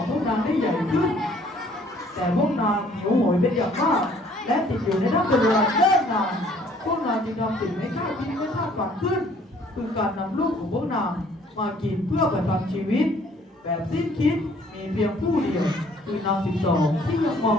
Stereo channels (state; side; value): normal; both; correlation 0.59